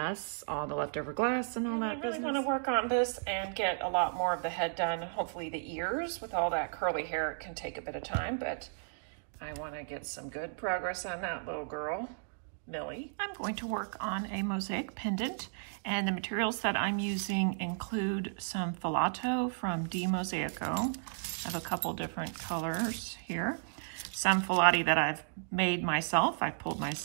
all the leftover glass and all that business. I really want to work on this and get a lot more of the head done. Hopefully the ears, with all that curly hair, it can take a bit of time, but I want to get some good progress on that little girl, Millie. I'm going to work on a mosaic pendant, and the materials that I'm using include some filato from Mosaico. I have a couple different colors here. Some filati that I've made myself, I pulled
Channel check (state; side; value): silent; left; digital silence